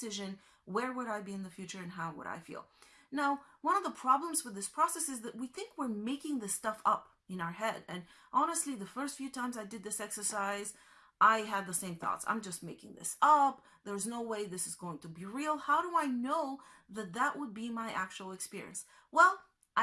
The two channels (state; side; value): identical; both; correlation 1.00